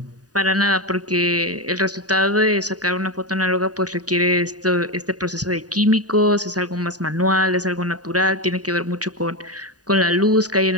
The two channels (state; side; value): late; left; 0.68 ms